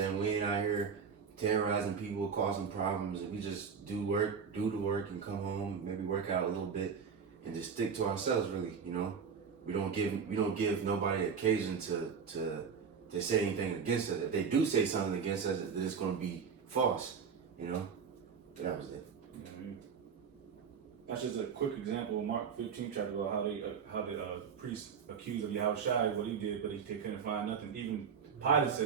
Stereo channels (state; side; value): quieter; left; 6.4 dB